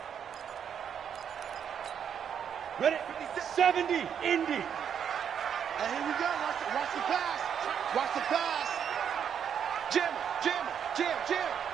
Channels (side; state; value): left; quieter; 8.2 dB